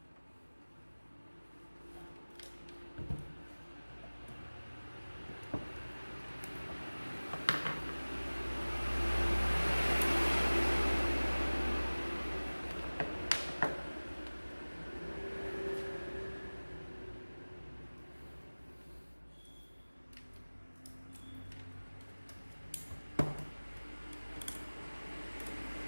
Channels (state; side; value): inverted; both; correlation -1.00